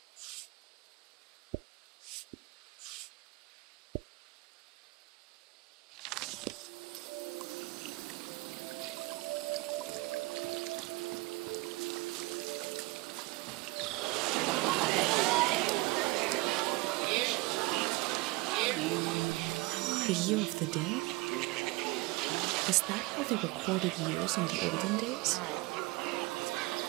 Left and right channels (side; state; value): left; quieter; 23.2 dB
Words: The year of the dead? Is that how they recorded years in the olden days?